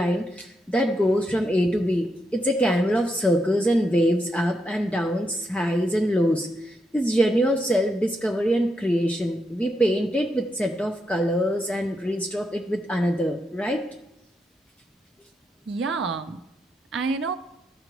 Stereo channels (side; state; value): both; normal; correlation 0.82